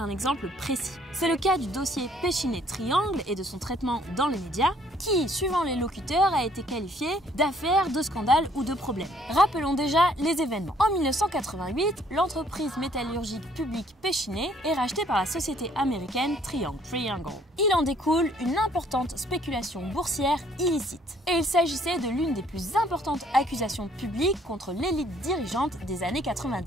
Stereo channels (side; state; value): both; normal; correlation 0.62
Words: exemple précis. C'est le cas du dossier Péchinet-Triangle et de son traitement dans les médias, qui, suivant les locuteurs, a été qualifié d'affaire, de scandale ou de problème. Rappelons déjà les événements. En 1988, l'entreprise métallurgique publique Péchinet est rachetée par la société américaine Triangle. Il en découle une importante spéculation boursière illicite. Et il s'agissait de l'une des plus importantes accusations publiques contre l'élite dirigeante des années